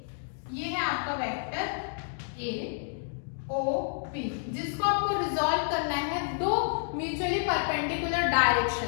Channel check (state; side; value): silent; right; digital silence